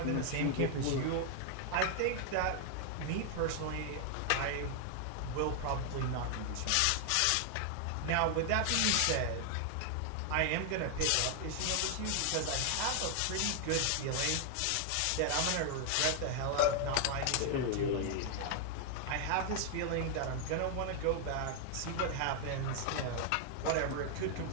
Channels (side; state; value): both; different; correlation 0.00